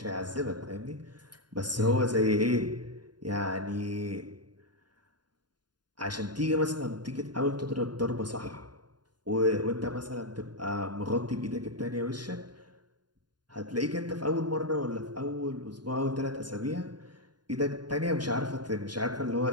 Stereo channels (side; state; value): left; late; 0.70 ms